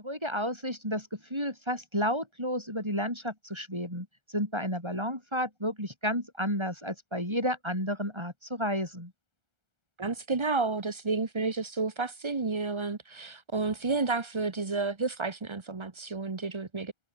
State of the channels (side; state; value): left; late; 1.3 ms